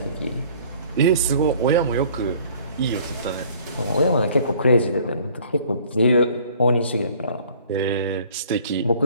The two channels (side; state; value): both; inverted; correlation -0.54